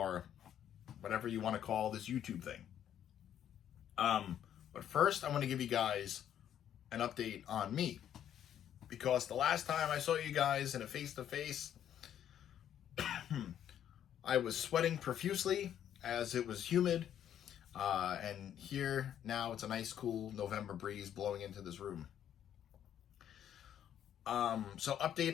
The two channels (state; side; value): quieter; right; 10.1 dB